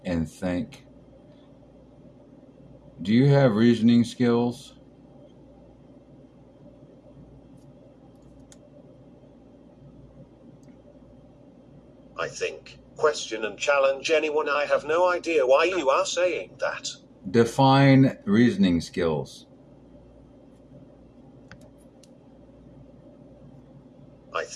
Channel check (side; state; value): both; identical; correlation 1.00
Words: and think? Do you have reasoning skills? I think, question, and challenge anyone. I have no idea why you are saying that. Define reasoning skills. I